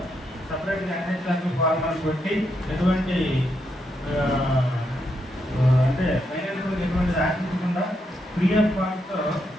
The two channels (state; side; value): normal; both; correlation 0.80